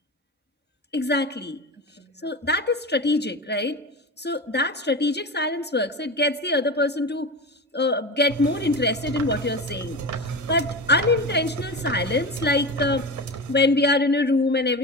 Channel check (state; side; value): normal; both; correlation 0.25